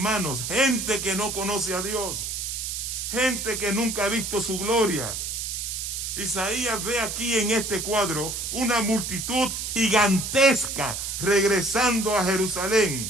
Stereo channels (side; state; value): right; noise; hiss, 4 dB below the sound